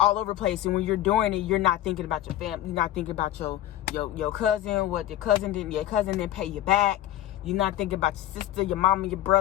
all over the place. And when you're doing it, you're not thinking about your family. You're not thinking about your cousin. What your cousin didn't pay you back. You're not thinking about your sister, your mama, your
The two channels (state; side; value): quieter; right; 13.2 dB